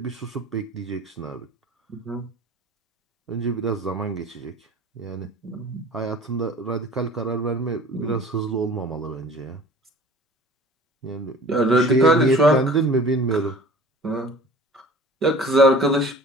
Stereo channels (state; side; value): normal; both; correlation 0.44